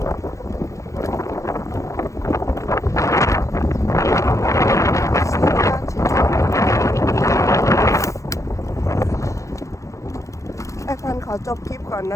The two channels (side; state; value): right; late; 0.15 ms